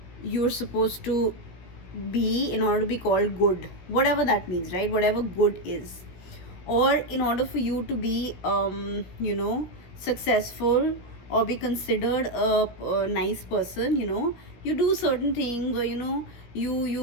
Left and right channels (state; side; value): late; right; 17 ms